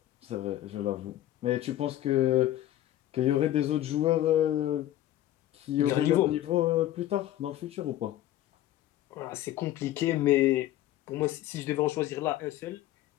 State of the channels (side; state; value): right; quieter; 13.7 dB